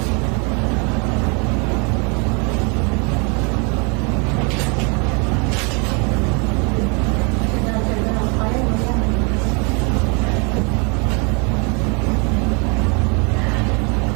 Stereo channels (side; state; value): left; quieter; 33.5 dB